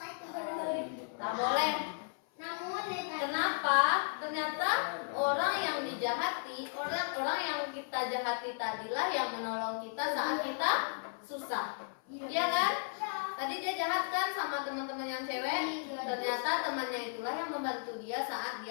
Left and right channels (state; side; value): silent; right; 55 dB below the other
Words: Tak boleh. Kenapa? Ternyata orang yang dijahati, orang yang kita jahati tadilah yang menolong kita saat kita susah. Iya kan? Tadi dia jahat kan sama teman-teman yang cewek. Ternyata temannya itulah yang membantu dia saat